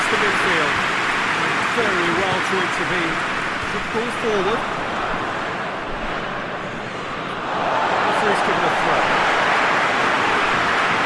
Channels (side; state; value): both; identical; correlation 1.00